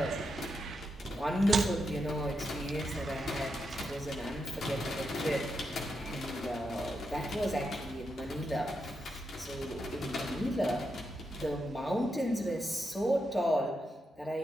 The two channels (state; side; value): normal; both; correlation 0.84